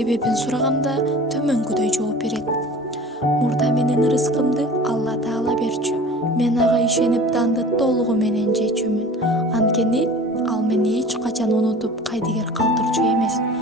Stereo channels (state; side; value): normal; both; correlation 0.42